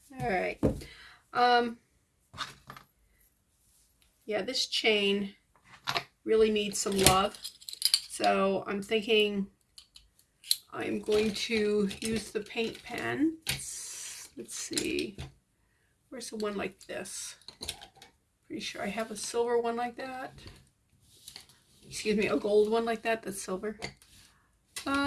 All right. Yeah, this chain really needs some love. So I'm thinking I'm going to use the paint pen. Let's see. Where's the one like this? Pretty sure I have a silver one like that. Excuse me, a gold one like that that's silver.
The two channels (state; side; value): identical; both; correlation 1.00